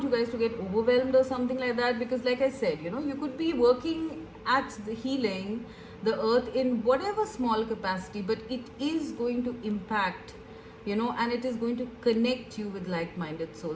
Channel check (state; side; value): identical; both; correlation 1.00